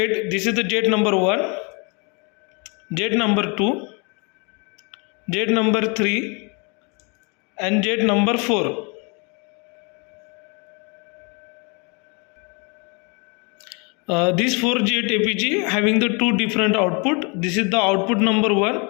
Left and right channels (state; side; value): quieter; right; 32.4 dB